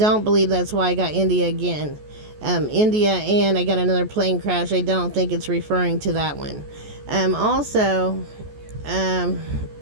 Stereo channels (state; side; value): late; left; 14 ms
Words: believe that's why I got India again. India, and I got another plane crash. I don't think it's referring to that one. Also,